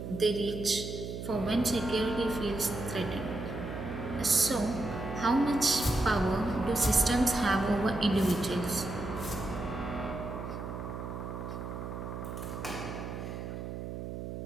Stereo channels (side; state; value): right; noise; hum, 7 dB below the sound